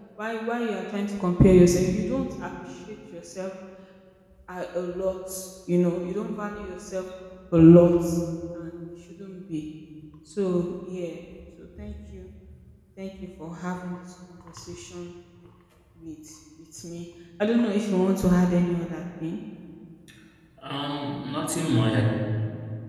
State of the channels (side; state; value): both; identical; correlation 1.00